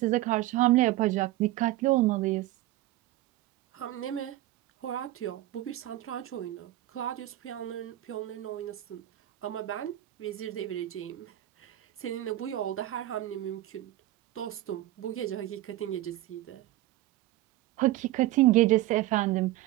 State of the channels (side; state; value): left; quieter; 15.7 dB